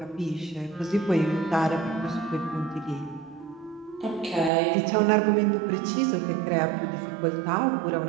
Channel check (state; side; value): drops out; left; at 4.5 s